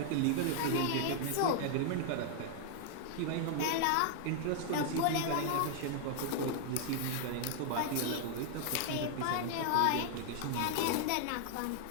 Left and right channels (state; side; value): different; both; correlation 0.00